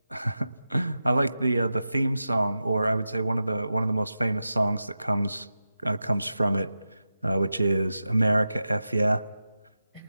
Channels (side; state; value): both; inverted; correlation -0.92